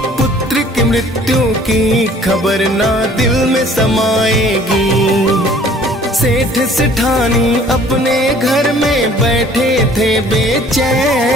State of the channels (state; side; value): normal; both; correlation 0.54